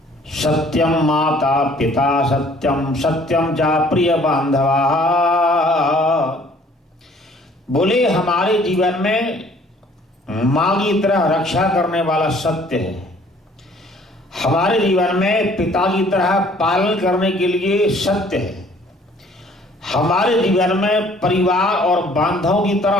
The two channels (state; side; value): normal; both; correlation 0.57